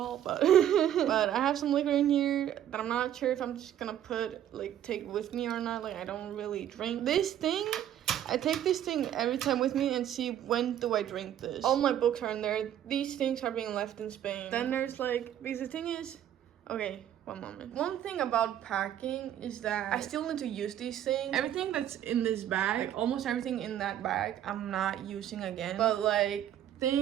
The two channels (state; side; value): quieter; left; 10.9 dB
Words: but but I have some liquor in here that I'm not sure if I'm just gonna take with me or not. Like I don't really drink this thing. I take this thing every time with me and see when do I drink this. All my books are in there. These things are being left in Spain. Then there's like, because the thing is, okay, one moment. One thing about packing is that I still need to use these things. Everything that's in this bag, like almost everything in that bag, I'm not using again. But like